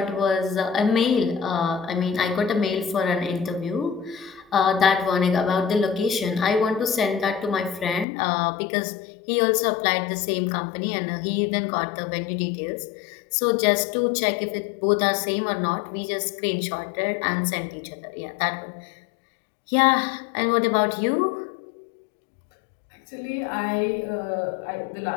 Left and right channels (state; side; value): drops out; right; at 8.1 s